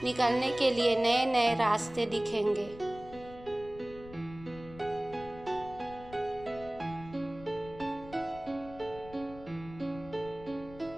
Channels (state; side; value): noise; left; rumble, 17 dB below the sound